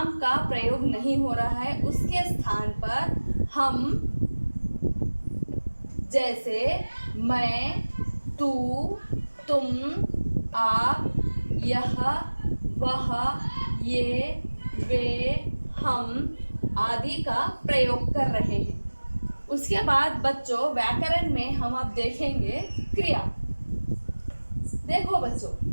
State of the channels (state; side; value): inverted; both; correlation -1.00